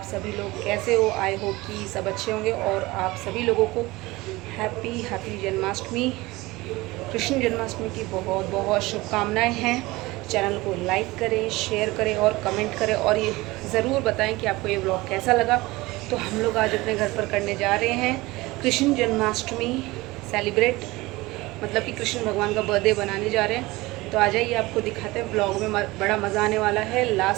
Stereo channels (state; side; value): quieter; left; 20.8 dB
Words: सभी लोग कैसे हो? आई होप कि सब अच्छे होंगे और आप सभी लोगों को हैप्पी जन्माष्टमी, कृष्ण जन्माष्टमी की बहुत बहुत शुभकामनाएं हैं। चैनल को लाइक करें, शेयर करें और कमेंट करें और ये ज़रूर बताएं कि आपको ये ब्लॉग कैसा लगा। तो हम लोग आज अपने घर पर करने जा रहे हैं कृष्ण जन्माष्टमी सेलिब्रेट, मतलब कि कृष्ण भगवान का बर्थडे बनाने जा रहे हैं। तो आ जाइए, आपको दिखाते हैं। ब्लॉग में बड़ा मज़ा आने वाला है।